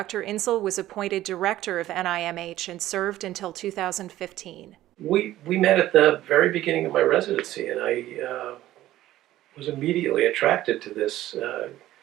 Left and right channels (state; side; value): quieter; left; 14.6 dB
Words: Insel was appointed director of NIMH and served until 2015. We met at the very beginning of my residency, and I was immediately attracted to this